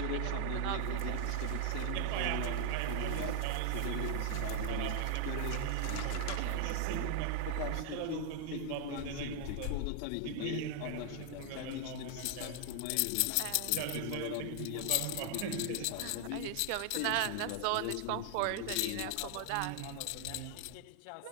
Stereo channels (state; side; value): different; both; correlation 0.00